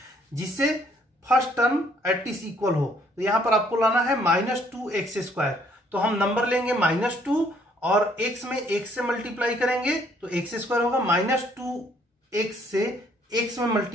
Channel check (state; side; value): normal; both; correlation 0.65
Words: जिससे फर्स्ट टर्म एटलीस्ट इक्वल हो। तो यहां पर आपको लाना है -2x²। तो हम नंबर लेंगे -2 और x में x से मल्टीप्लाई करेंगे तो x² होगा, -2x से x में